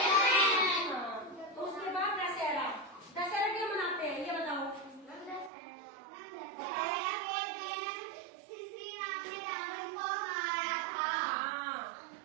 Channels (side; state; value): left; drops out; at 5.5 s